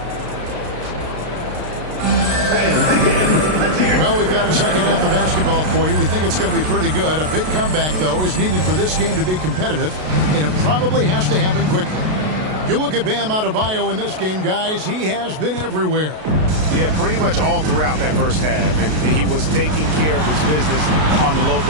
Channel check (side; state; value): left; late; 33 ms